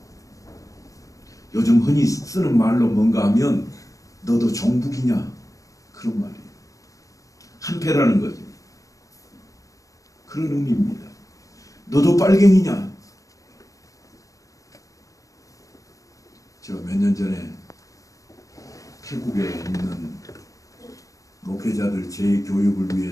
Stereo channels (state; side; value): late; right; 0.16 ms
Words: 요즘 흔히 쓰는 말로 뭔가 하면 너도 종북이냐? 그런 말이에요. 한패라는 거죠. 그런 의미입니다. 너도 빨갱이냐? 제가 몇 년 전에 태국에 있는 목회자들 재교육을